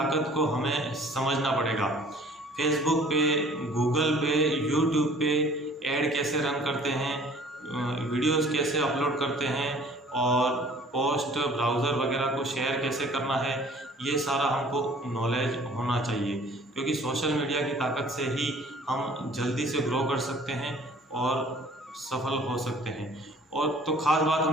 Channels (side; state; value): both; normal; correlation 0.52